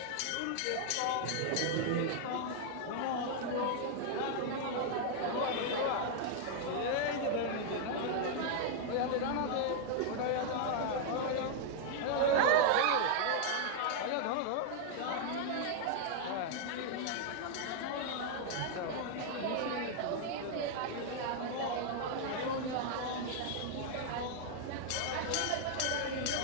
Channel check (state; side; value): different; both; correlation -0.01